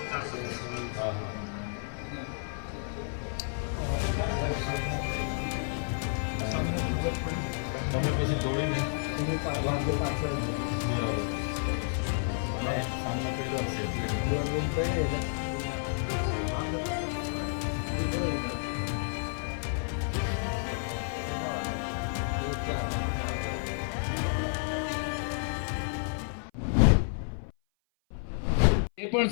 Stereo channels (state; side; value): silent; right; 56 dB below the other